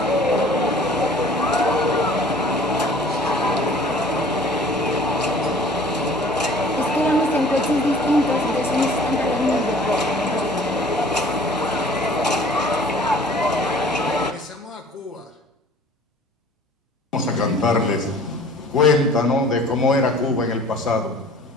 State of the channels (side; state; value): both; normal; correlation 0.49